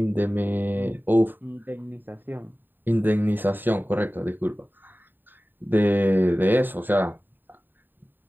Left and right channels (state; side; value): late; left; 0.092 ms